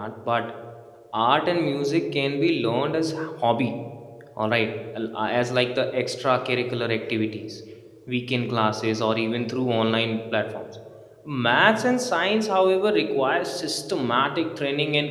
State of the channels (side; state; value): both; identical; correlation 1.00